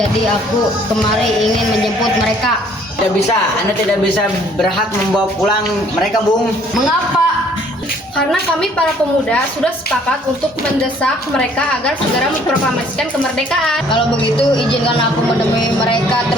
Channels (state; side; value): normal; both; correlation 0.59